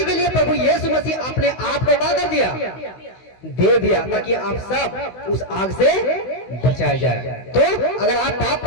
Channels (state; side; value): late; right; 16 ms